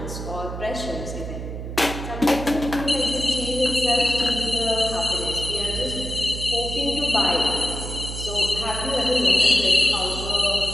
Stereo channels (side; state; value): right; noise; hum, 7 dB below the sound